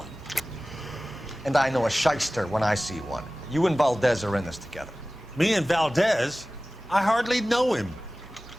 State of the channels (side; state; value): both; normal; correlation 0.97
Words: And I know a shyster when I see one. You and Valdez are in this together. Me and Valdez? I hardly know him.